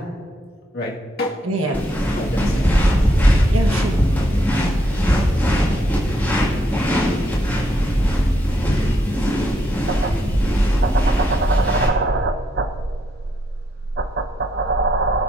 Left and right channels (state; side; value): normal; both; correlation 0.76